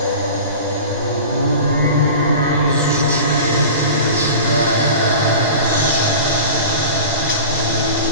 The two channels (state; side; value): inverted; both; correlation -0.36